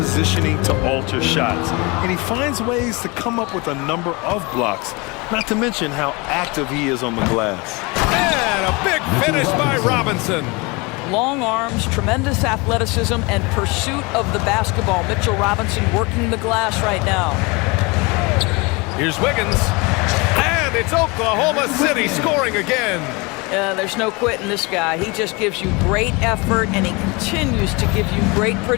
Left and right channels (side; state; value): right; quieter; 26.9 dB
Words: to alter shots. And he finds ways to come up with a number of blocks, not to mention how active he is on the glass. And a big finish by Robinson. Long arms, tremendous athleticism, and pursuit of the basketball. Mitchell Robinson working the glass right now. Here's Wiggins. And it's Oklahoma City scoring again. There's no quitting this guy. He just gives you great effort, and he continues to give you great